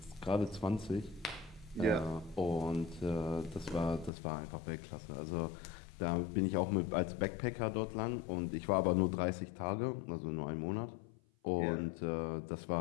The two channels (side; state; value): right; drops out; at 4.1 s